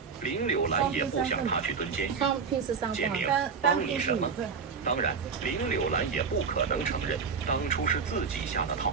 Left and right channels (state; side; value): quieter; left; 5.7 dB